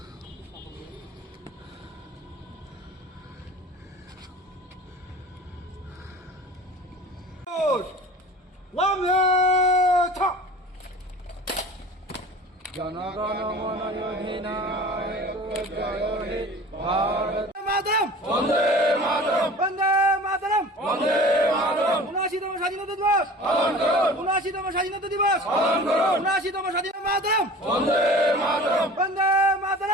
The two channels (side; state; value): both; normal; correlation 0.41